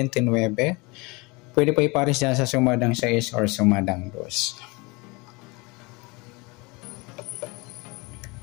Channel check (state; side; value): quieter; right; 26.4 dB